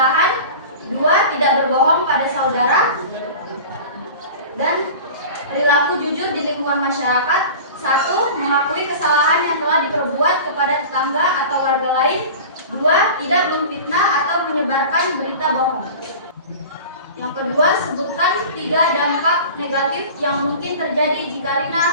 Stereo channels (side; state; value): both; inverted; correlation -0.36